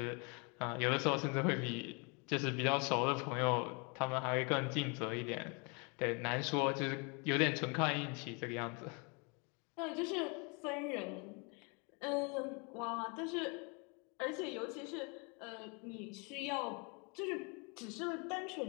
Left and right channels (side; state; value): right; quieter; 32.6 dB